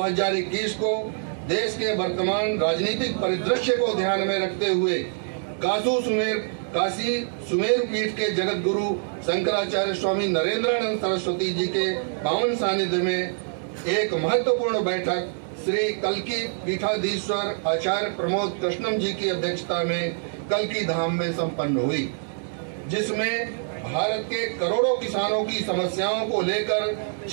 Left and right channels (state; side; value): silent; left; digital silence